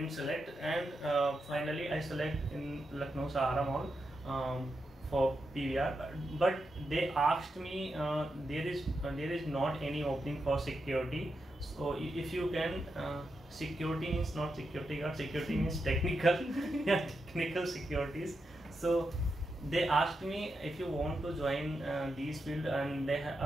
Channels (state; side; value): normal; both; correlation 0.86